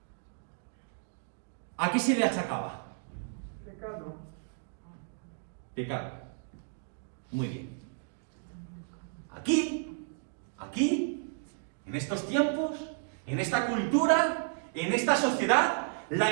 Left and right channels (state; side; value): silent; left; digital silence